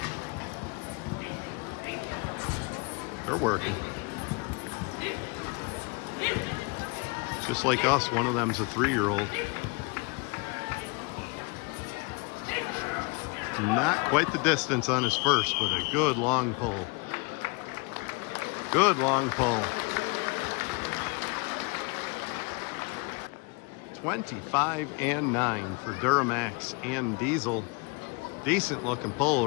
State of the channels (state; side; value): quieter; right; 28.7 dB